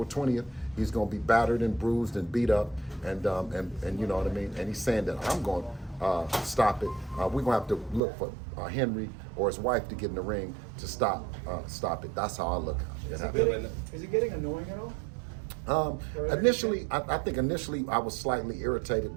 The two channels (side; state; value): left; drops out; at 8.0 s